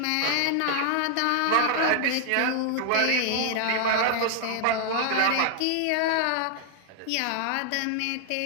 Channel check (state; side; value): different; both; correlation 0.00